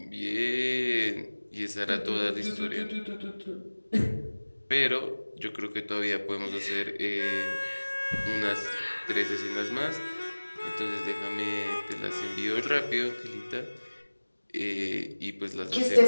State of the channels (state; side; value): inverted; both; correlation -1.00